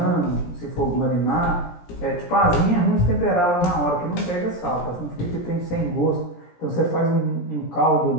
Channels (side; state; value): right; late; 17 ms